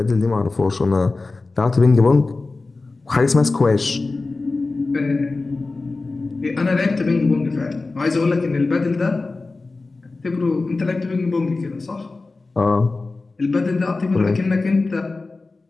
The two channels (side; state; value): right; quieter; 3.6 dB